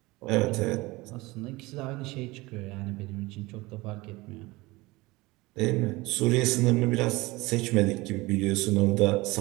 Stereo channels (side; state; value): left; quieter; 21.7 dB